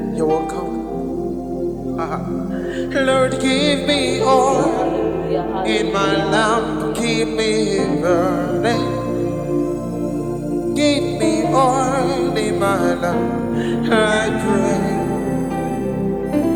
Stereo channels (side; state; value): both; identical; correlation 1.00